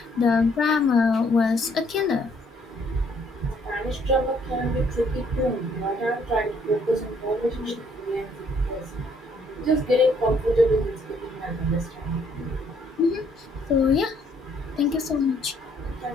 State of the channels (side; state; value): both; normal; correlation 0.66